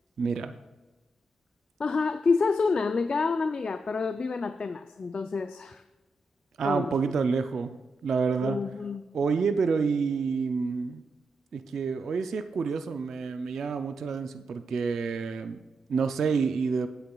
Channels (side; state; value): both; normal; correlation 0.84